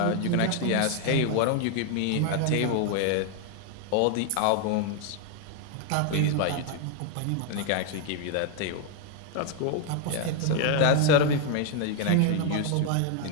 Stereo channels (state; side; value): different; both; correlation 0.00